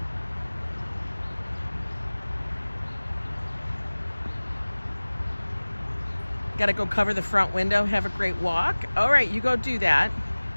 Gotta go cover the front window, have a great walk. All right, you go do that.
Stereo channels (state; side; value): inverted; both; correlation -1.00